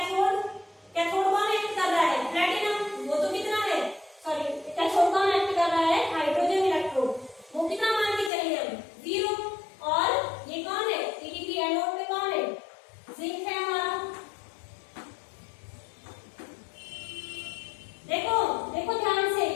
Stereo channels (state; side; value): drops out; right; at 8.3 s